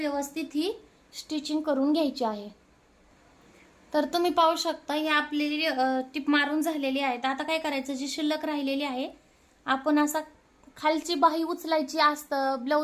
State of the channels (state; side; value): identical; both; correlation 1.00